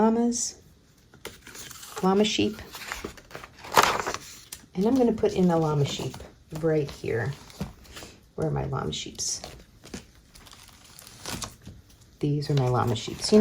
sheep. And I'm going to put in a llama sheep right here. Where are my llama sheeps? These are my llama sheeps, you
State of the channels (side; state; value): both; identical; correlation 1.00